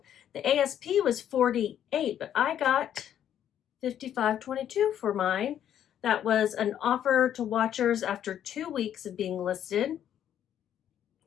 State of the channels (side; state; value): right; quieter; 10.2 dB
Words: The ASP was 48, but I got 55.22 for mine. That was an offer to watchers after 2 weeks of being listed.